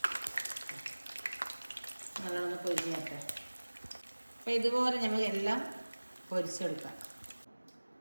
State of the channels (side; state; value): both; inverted; correlation -1.00